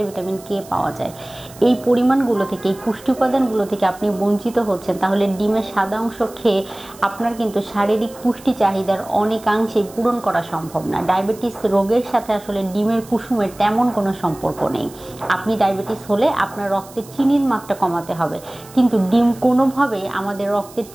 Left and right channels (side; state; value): right; noise; hiss, 21 dB below the sound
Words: ভিটামিন কে পাওয়া যায়। এই পরিমাণগুলো থেকে, এই পুষ্টি উপাদানগুলো থেকে আপনি বঞ্চিত হচ্ছেন, তাহলে ডিমের সাদা অংশ খেয়ে আপনার কিন্তু শারীরিক পুষ্টি চাহিদার অনেকাংশেই পূরণ করা সম্ভব না। ডায়াবেটিস রোগের সাথে আসলে ডিমের কুসুমের তেমন কোনো সম্পর্ক নেই। আপনি ডায়াবেটিস হলে আপনার রক্তের চিনির মাত্রা কমাতে হবে, কিন্তু ডিম কোনোভাবেই আমাদের রক্তের